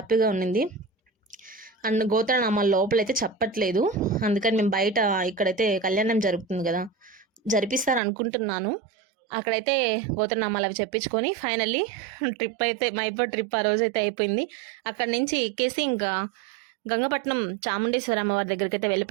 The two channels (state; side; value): drops out; left; at 8.0 s